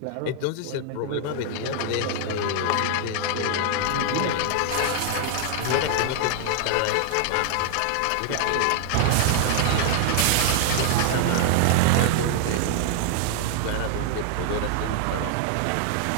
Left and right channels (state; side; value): different; both; correlation 0.00